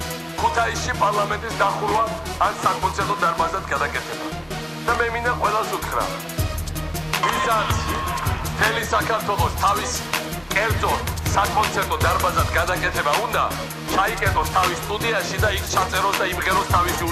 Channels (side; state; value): both; identical; correlation 1.00